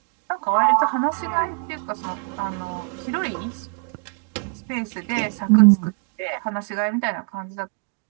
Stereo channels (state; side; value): quieter; left; 38.6 dB